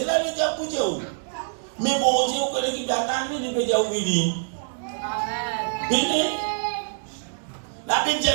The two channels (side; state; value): left; silent; digital silence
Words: là, il diable pour Dieu. Mais bon Dieu, vous connaissez qui attend, il peut dire oui. Amen. La Bible dit,